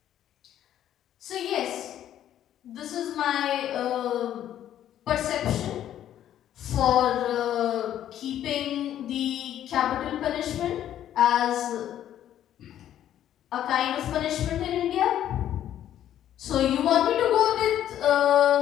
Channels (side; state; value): right; quieter; 11.3 dB